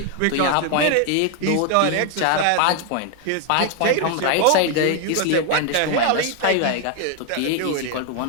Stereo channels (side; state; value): both; different; correlation 0.00